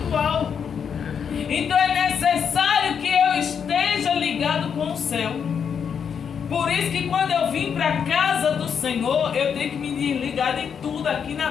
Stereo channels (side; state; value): right; quieter; 7.2 dB